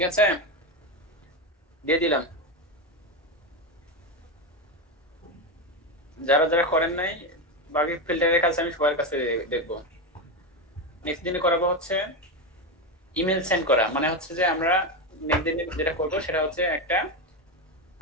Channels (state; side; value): normal; both; correlation 0.13